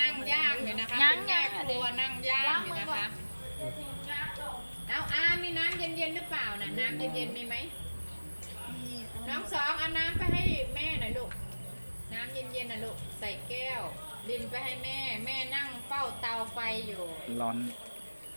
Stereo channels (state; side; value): inverted; both; correlation -1.00